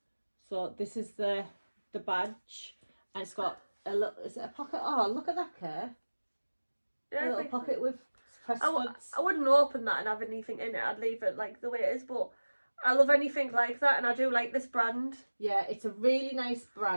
So this is the badge, and it's got a little. Is it a pocket? Oh, look at that, Kay. Yeah, a little pocket with press studs. I wouldn't open that and have anything in it. I'd leave it like the way it is. But I love anything like that, and I do like this brand. Yeah, it's a really nice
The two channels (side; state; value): both; inverted; correlation -1.00